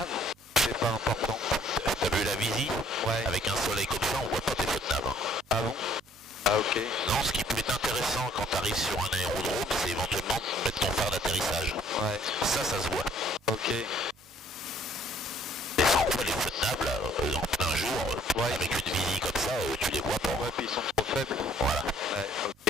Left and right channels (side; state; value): both; normal; correlation 0.60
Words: C'est pas important. T'as vu la visie? Ouais. Avec un soleil comme ça, on voit pas tes feux de nav. Ah bon? Ah ok. Non, ce qui peut être intéressant quand tu arrives sur un aérodrome, c'est éventuellement de mettre ton phare d'atterrissage. Ouais. Ça se voit. Ok. Mais sans quoi les feux de nav, là, en plein jour, Ouais. avec une visie comme ça, tu les vois pas. Ouais, puis ils sont trop faibles. Voilà. Ouais,